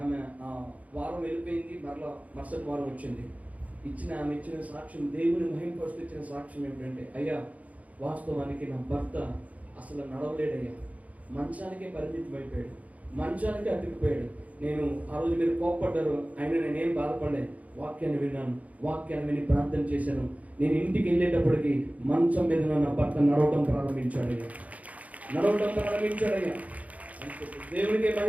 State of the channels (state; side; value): late; left; 0.070 ms